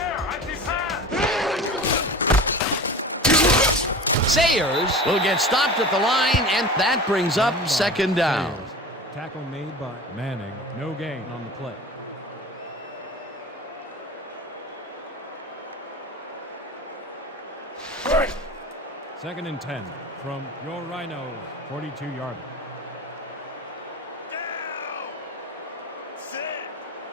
Sayers will get stopped at the line, and that brings up second down. Tackle made by Manning. No gain on the play. Second and 10 from your Rhinos, 42-yard line. Down. Set.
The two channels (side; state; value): both; normal; correlation 0.34